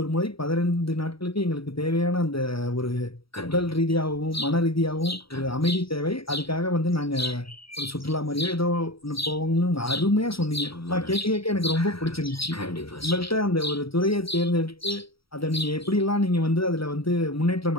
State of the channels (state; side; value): late; right; 0.75 ms